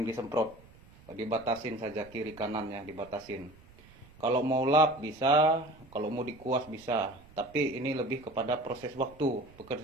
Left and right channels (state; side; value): noise; right; rumble, 24 dB below the sound